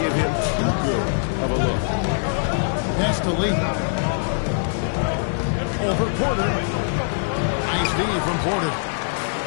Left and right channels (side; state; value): right; silent; digital silence